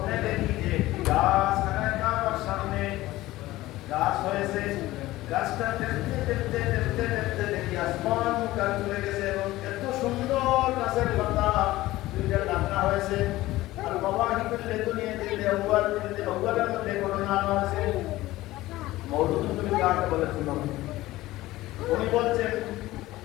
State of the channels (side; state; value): right; quieter; 17.2 dB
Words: দেখি যে গাছ খানায় কাবার সামনে গাছ হয়েছে, গাছটা দেখতে দেখতে দেখতে দেখতে দেখি আসমান মুখা চলে গেছে এবং এত সুন্দর গাছের পাতা দুইটা ডাকনা হয়েছে। আর বাবা হিকুল্লে দুনিয়া দিলে আউয়ালের মধ্যে ঘটনা হয়েছে। মওদুদ তুমি কাকে বলে শুনো, উনি বলছেন